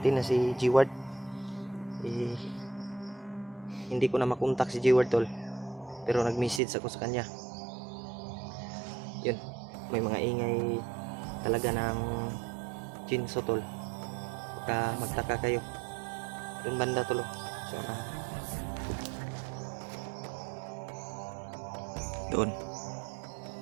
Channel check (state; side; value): drops out; left; at 6.6 s